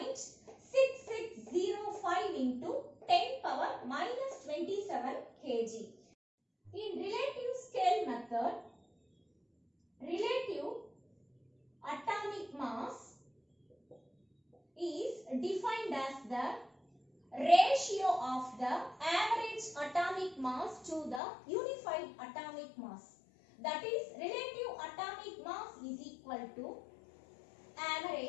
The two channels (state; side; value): drops out; right; at 21.2 s